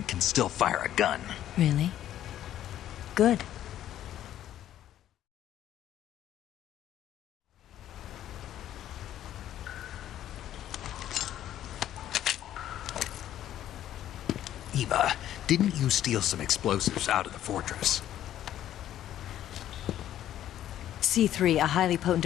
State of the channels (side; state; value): right; quieter; 11.9 dB